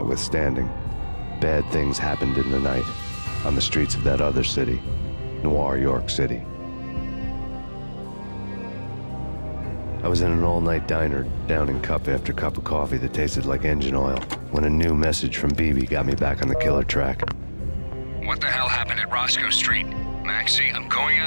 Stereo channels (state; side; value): inverted; both; correlation -1.00